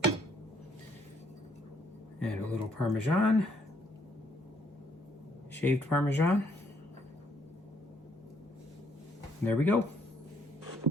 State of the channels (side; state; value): both; normal; correlation 0.68